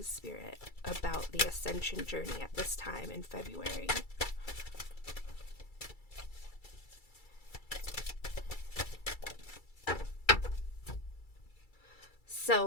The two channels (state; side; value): late; right; 2.3 ms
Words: Spirit, about the Ascension journey at this time in February?